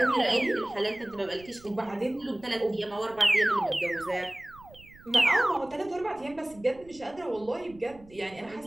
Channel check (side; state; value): right; noise; rumble, 23 dB below the sound